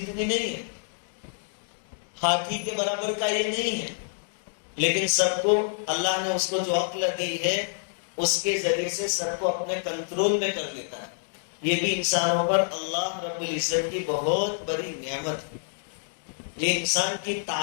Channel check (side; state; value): right; silent; digital silence